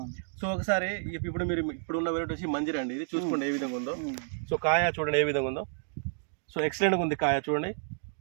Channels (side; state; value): left; silent; digital silence